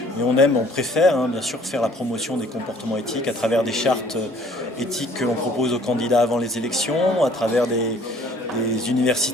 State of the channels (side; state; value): both; normal; correlation 0.56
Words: Mais on préfère bien sûr faire la promotion des comportements éthiques à travers des chartes éthiques que l'on propose aux candidats avant les élections, à travers des